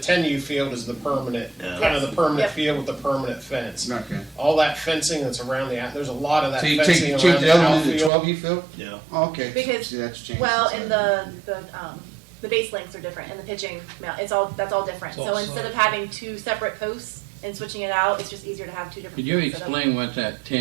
field is the permanent, Yeah. kind of the permanent Yep. field with the permanent fence. Okay. All that fencing that's around there's a lot of that So you fencing change around the the other one to the outfield. 12U field? Yeah. Oh, okay. Because, See, that's changed. well, since and I- the base lengths are different, and the pitching, that's all different. It's So all instead of solid. having two separate posts and switching it out, it's just easier to have two different. Could you fields set up. explain what that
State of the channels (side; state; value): left; drops out; at 8.1 s